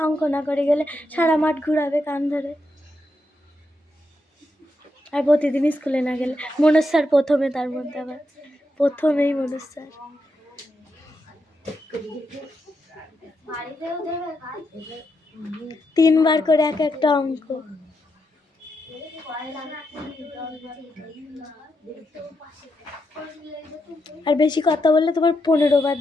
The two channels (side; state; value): both; normal; correlation 0.83